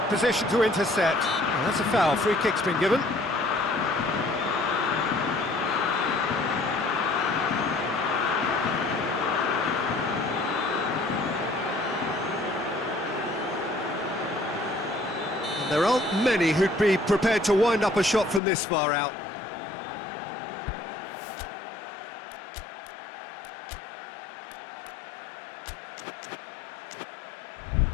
position to intercept. Well, that's a foul. Free kick's been given. There aren't many who'd be prepared to wind up a shot from this far out.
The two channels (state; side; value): drops out; right; at 18.4 s